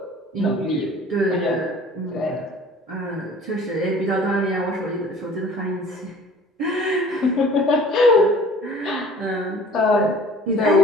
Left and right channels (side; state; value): both; normal; correlation 0.48